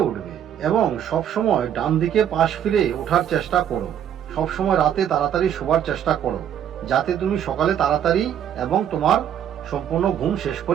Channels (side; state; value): left; quieter; 9.7 dB